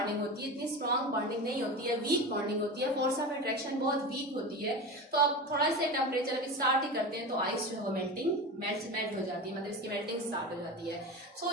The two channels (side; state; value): both; normal; correlation 0.26